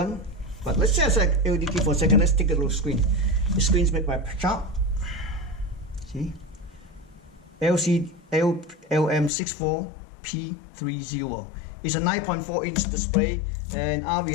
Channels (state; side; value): drops out; right; at 9.3 s